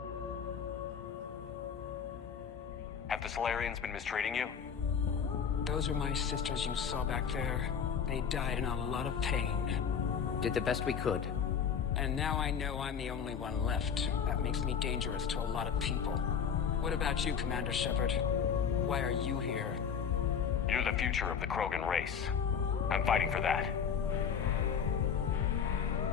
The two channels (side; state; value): right; quieter; 7.2 dB